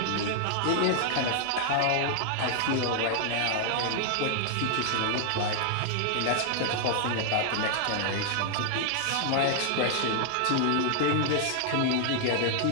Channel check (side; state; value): both; different; correlation 0.00